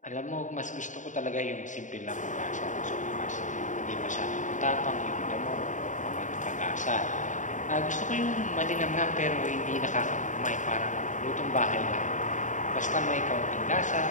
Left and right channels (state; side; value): late; right; 0.36 ms